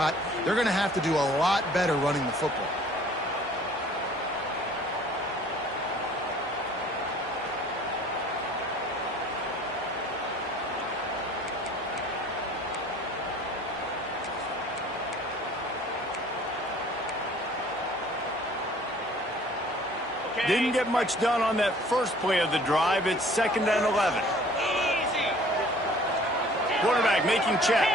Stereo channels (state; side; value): normal; both; correlation 0.52